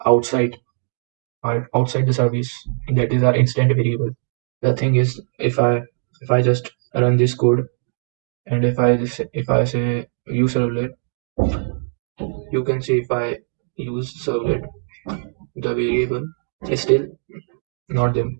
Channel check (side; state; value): left; silent; digital silence